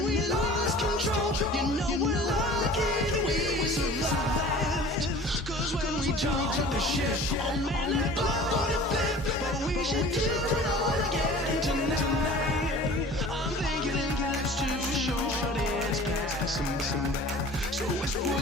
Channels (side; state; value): both; normal; correlation 0.44